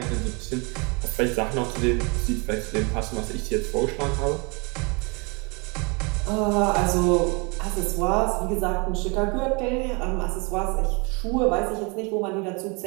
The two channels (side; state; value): left; quieter; 30.6 dB